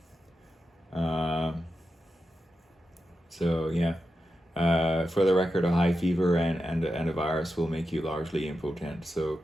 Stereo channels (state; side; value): normal; both; correlation 0.89